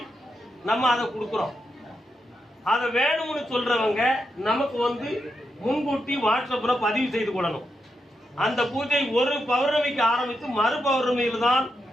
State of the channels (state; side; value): normal; both; correlation 0.85